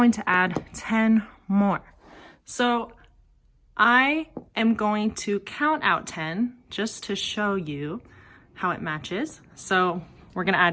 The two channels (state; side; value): identical; both; correlation 1.00